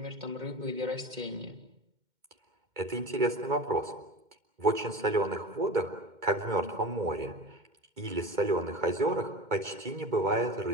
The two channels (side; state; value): left; late; 2.1 ms